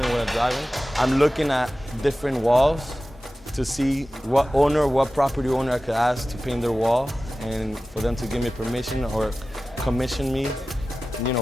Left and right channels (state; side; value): normal; both; correlation 0.95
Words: driving, I'm looking at different walls to see what property owner I could ask to paint their wall, and for them to give me permission or commission me,